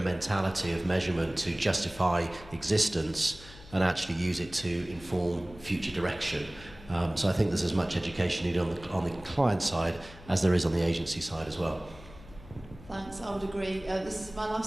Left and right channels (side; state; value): left; noise; hum, 19 dB below the sound